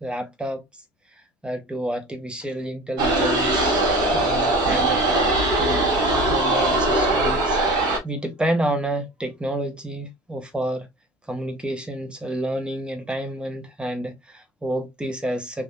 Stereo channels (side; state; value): both; normal; correlation 0.40